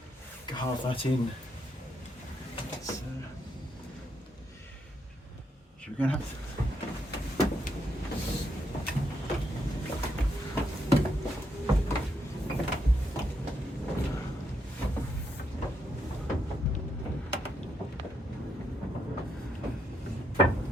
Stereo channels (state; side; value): normal; both; correlation 0.78